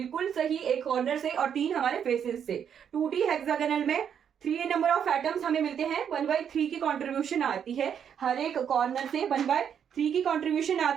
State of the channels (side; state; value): left; quieter; 8.2 dB